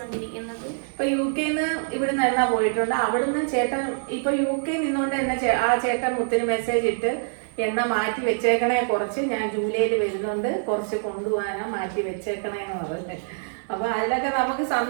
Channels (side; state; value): left; silent; digital silence